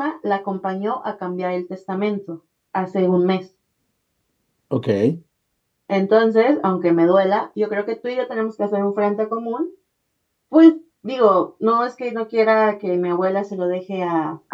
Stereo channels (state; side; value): identical; both; correlation 1.00